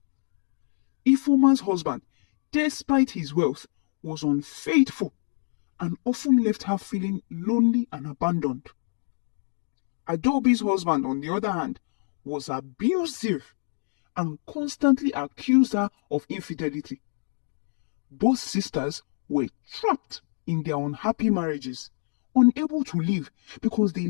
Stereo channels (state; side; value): silent; right; 59 dB below the other